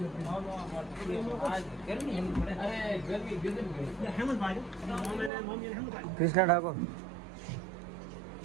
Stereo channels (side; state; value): left; drops out; at 5.3 s